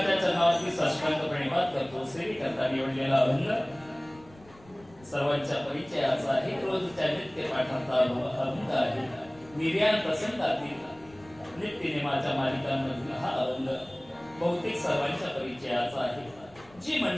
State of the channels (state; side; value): noise; left; rumble, 25 dB below the sound